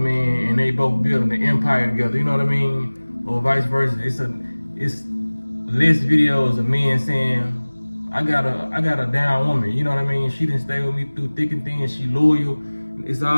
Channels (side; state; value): both; inverted; correlation -1.00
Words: and they both building an empire together, you know what I mean? Or vice versa. It's less videos of men saying, I got a down woman, you know what I mean? She didn't stay with me through thick and thin, she loyal. It's